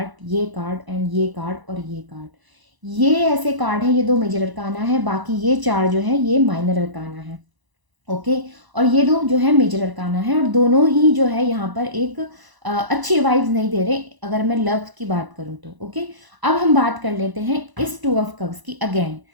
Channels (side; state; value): left; late; 1.0 ms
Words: ये कार्ड एंड ये कार्ड और ये कार्ड, ये ऐसे कार्ड हैं। ये 2 मेजर अरकाना है, बाकी ये 4 जो है ये माइनर अरकाना है, ओके। और ये 2 जो है मेजर अरकाना है, और दोनों ही जो है यहाँ पर एक अच्छी वाइब्स नहीं दे रहे अगर मैं लव की बात करूँ तो, ओके। अब हम बात कर लेते हैं इस 2 ऑफ कप्स की अगेन।